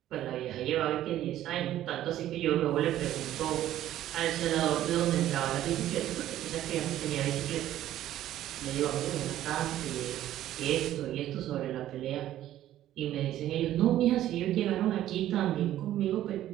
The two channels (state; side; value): quieter; left; 12.9 dB